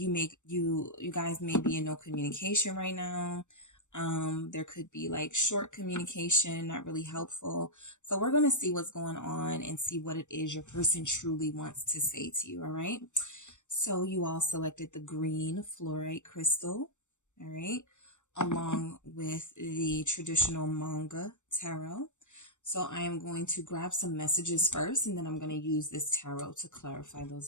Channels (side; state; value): right; late; 0.84 ms